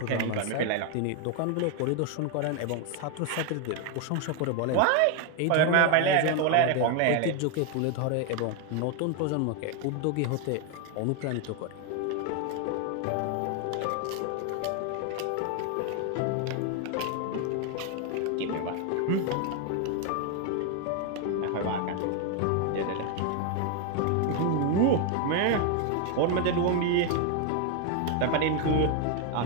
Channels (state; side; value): different; both; correlation 0.01